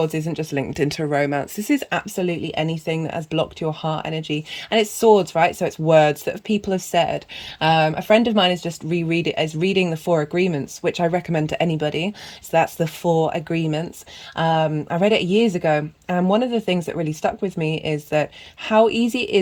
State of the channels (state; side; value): identical; both; correlation 1.00